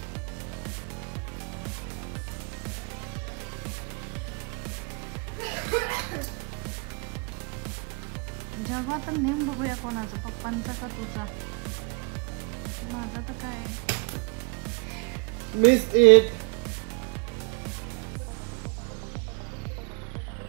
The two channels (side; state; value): left; quieter; 34.4 dB